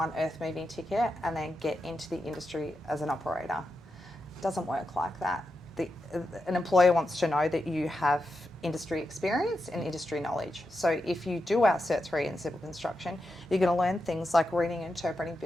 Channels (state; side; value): normal; both; correlation 0.88